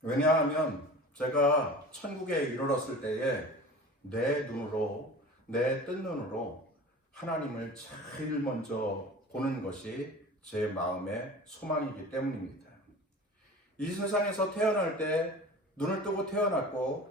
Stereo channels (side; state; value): both; normal; correlation 0.39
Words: 왜냐하면 제가 천국에 이르렀을 때에 내 뜬 눈으로 하나님을 제일 먼저 보는 것이 제 마음의 소망이기 때문입니다. 이 세상에서 태어날 때 눈을 뜨고